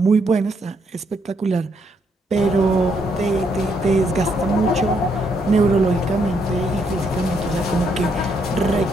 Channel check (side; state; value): both; normal; correlation 0.74